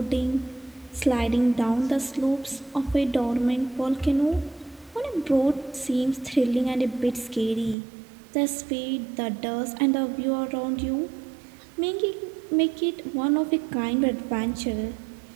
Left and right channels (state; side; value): drops out; left; at 7.8 s